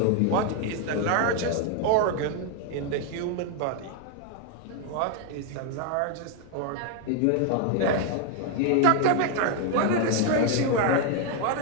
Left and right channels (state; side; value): different; both; correlation 0.01